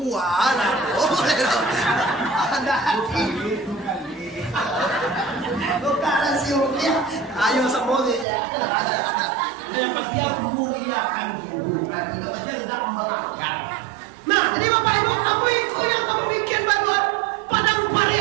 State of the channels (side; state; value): left; drops out; at 8.2 s